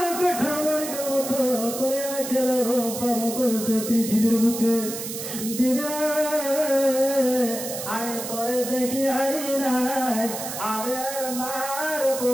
কাঠামোর মতো করে খেলে পালন করেছে পৃথিবীর বুকে দিদা আমি তোরে দেখি হারি নাই আমার মার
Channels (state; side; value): noise; right; hiss, 7 dB below the sound